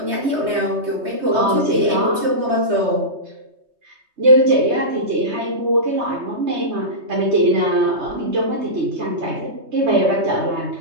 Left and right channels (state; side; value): late; left; 3.2 ms